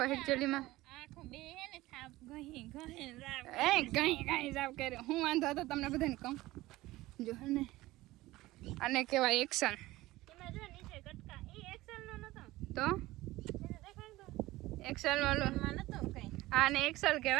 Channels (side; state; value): left; quieter; 18.1 dB